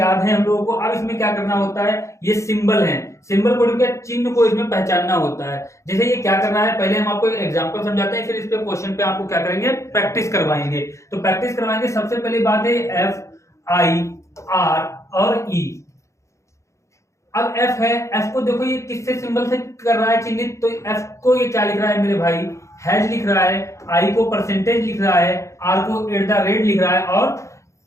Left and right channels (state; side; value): late; right; 0.14 ms